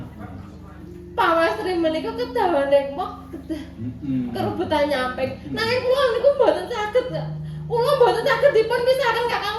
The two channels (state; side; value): identical; both; correlation 1.00